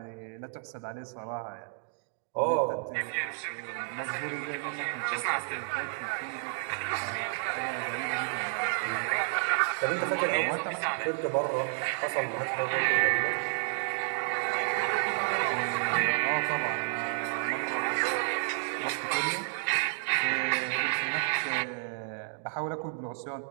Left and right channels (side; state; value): left; silent; digital silence